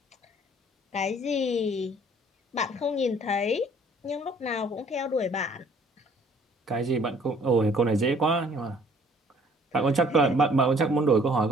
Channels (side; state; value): both; normal; correlation 0.57